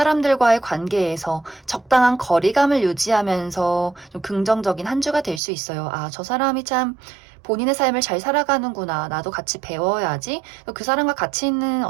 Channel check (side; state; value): left; drops out; at 5.4 s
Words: 관계에서 적당한 거리감을 유지하면서 좀 긍정적인 한 주가 될 수 있어요. 저 사람이 참 본인의 삶을 잘 살아가는구나. 나도 같이 배워야지. 그 사람과 같이 있는